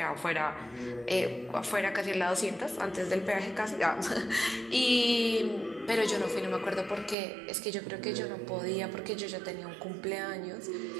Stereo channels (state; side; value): drops out; left; at 7.2 s